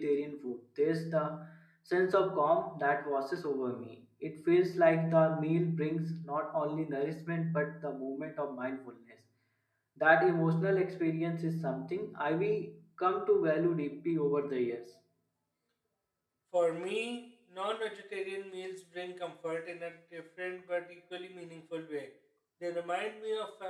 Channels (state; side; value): identical; both; correlation 1.00